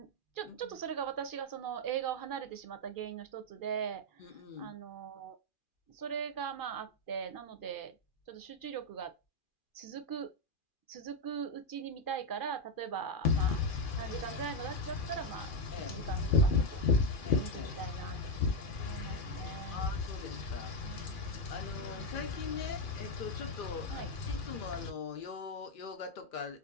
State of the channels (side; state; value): right; late; 2.4 ms